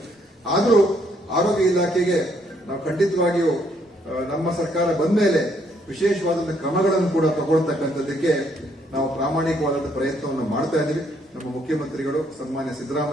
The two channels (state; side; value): normal; both; correlation 0.70